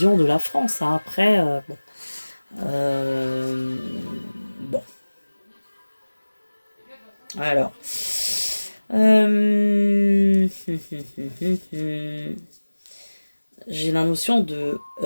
de la France. Hein. Après, bon. Bon. Alors. J'ai la notion de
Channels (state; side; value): inverted; both; correlation -1.00